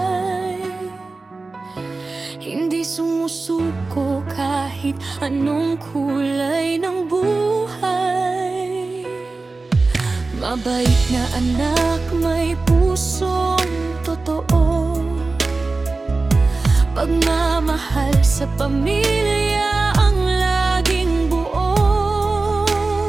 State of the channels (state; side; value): quieter; left; 3.6 dB